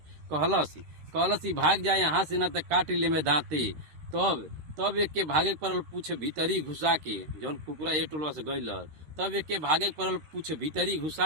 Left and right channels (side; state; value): left; late; 13 ms